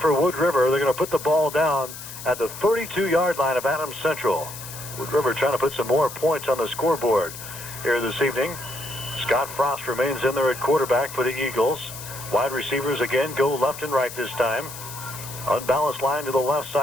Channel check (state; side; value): noise; left; hiss, 12 dB below the sound